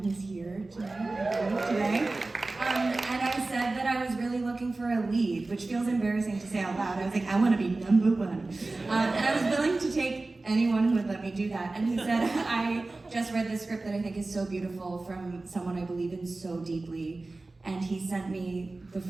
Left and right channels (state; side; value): quieter; left; 3.2 dB